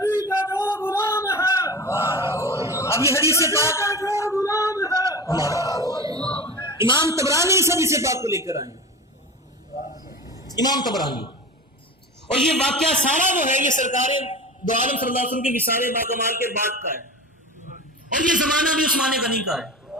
کا جو غلام ہے، اب یہ حدیث پاک جو غلام ہے، امام طبرانی اس حدیث پاک کو لے کر آئے، امام طبرانی، اور یہ واقعہ سارا جو ہے یہ سرکار دو عالم صلی اللہ علیہ وسلم کے وصال باکمال کے بعد کا ہے، اور یہ زمانہ بھی عثمان غنی کا ہے،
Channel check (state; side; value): normal; both; correlation 0.31